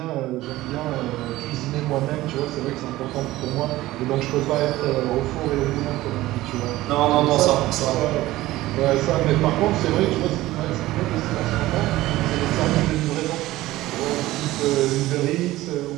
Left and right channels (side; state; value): left; quieter; 16.9 dB